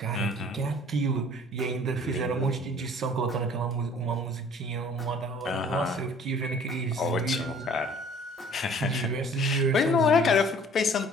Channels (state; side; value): normal; both; correlation 0.53